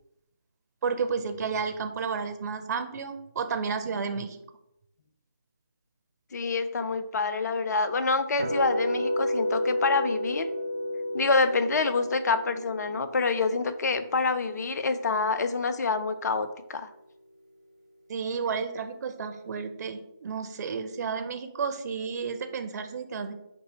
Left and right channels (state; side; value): inverted; both; correlation -0.51